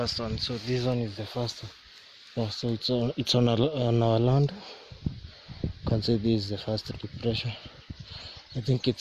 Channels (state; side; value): identical; both; correlation 1.00